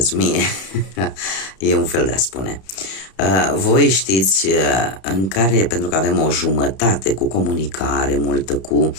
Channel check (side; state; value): right; late; 31 ms